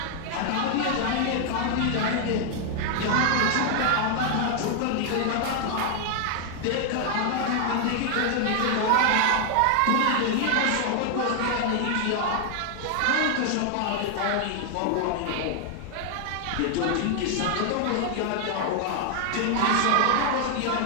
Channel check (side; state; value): both; different; correlation 0.00